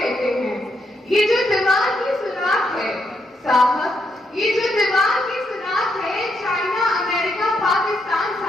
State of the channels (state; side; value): normal; both; correlation 0.79